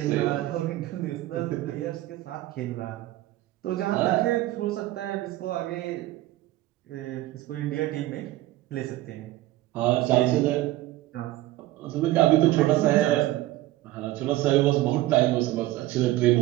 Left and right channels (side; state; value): left; quieter; 16.2 dB